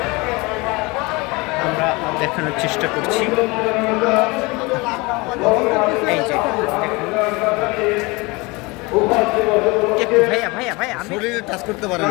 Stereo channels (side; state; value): right; quieter; 25.3 dB